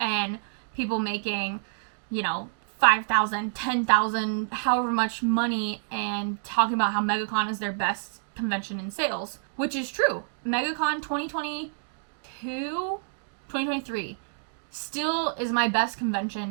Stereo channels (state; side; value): silent; left; digital silence